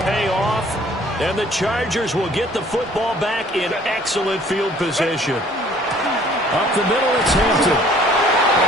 pay off. And the Chargers will get the football back in excellent field position. Up the middle, it's Hampton.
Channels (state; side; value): normal; both; correlation 0.56